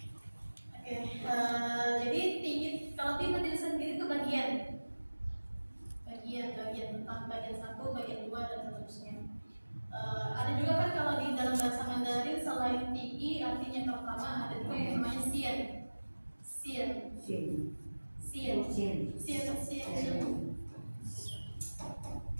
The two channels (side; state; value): both; inverted; correlation -1.00